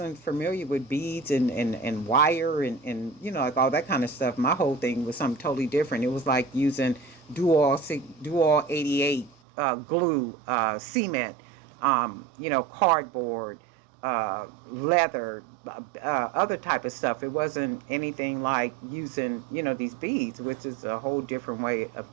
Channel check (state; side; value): drops out; left; at 9.3 s